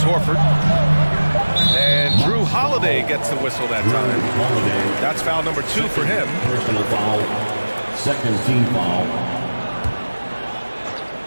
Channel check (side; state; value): both; inverted; correlation -1.00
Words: Horford. And Drew Holiday gets the whistle that time. That's foul number 2 for him. Personal foul. Second team foul.